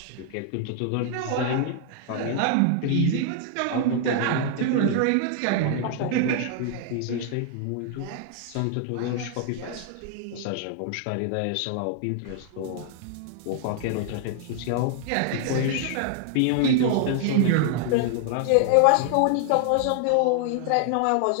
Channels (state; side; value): different; both; correlation 0.00